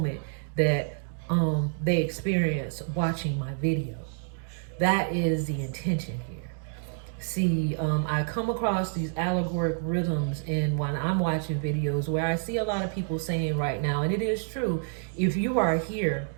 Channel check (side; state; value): left; silent; 59 dB below the other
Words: that they experience watching my video. That is the intention here. See, I come across these allegoric rhythms in when I'm watching videos where I see a lot of people saying right now, and it is true, if you are here